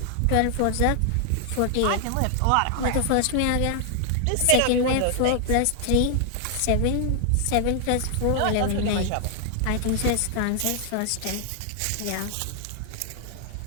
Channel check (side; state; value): both; different; correlation 0.00